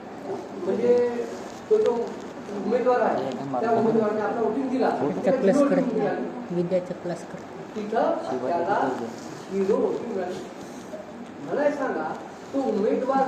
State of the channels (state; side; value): identical; both; correlation 1.00